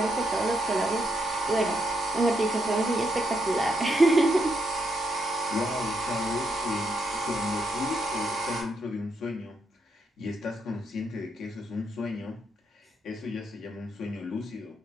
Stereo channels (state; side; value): normal; both; correlation 0.78